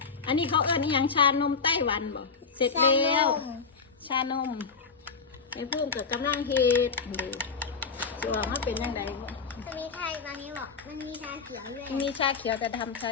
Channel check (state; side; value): quieter; right; 5.1 dB